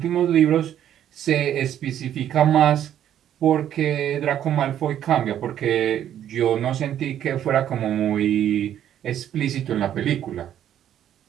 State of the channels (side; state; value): left; quieter; 10.6 dB